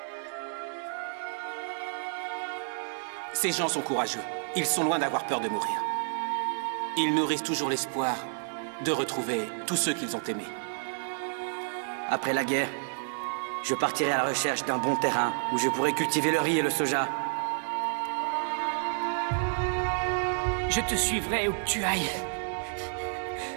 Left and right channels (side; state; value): left; silent; digital silence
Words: Ces gens sont courageux. Ils sont loin d'avoir peur de mourir. Ils nourrissent toujours l'espoir de retrouver tous ceux qu'ils ont aimés. Après la guerre, je partirai à la recherche d'un bon terrain où je pourrai cultiver le riz et le soja. Je te suivrai où que tu ailles.